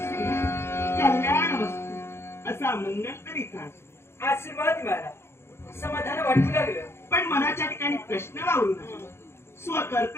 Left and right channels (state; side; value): late; right; 0.12 ms